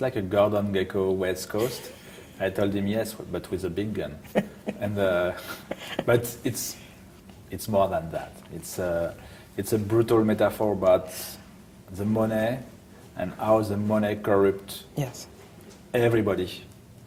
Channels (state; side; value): identical; both; correlation 1.00